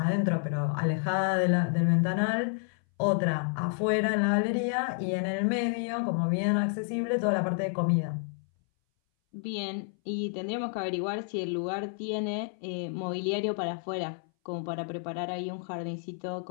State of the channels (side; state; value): right; silent; 58 dB below the other